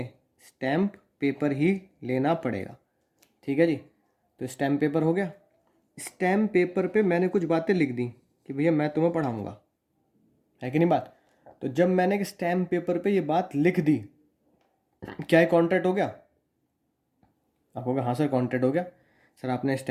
स्टैम्प पेपर ही लेना पड़ेगा, ठीक है जी। तो स्टैम्प पेपर हो गया। स्टैम्प पेपर पे मैंने कुछ बातें लिख दी कि भैया मैं तुम्हें पढ़ाऊंगा, है कि नहीं बात। तो जब मैंने एक स्टैम्प पेपर पे ये बात लिख दी, क्या ये कॉन्ट्रैक्ट हो गया? आप कहोगे हाँ सर कॉन्ट्रैक्ट हो गया। सर आपने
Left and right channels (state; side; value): identical; both; correlation 1.00